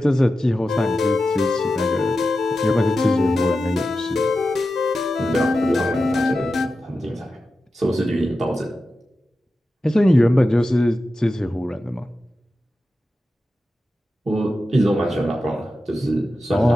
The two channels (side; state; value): both; normal; correlation 0.92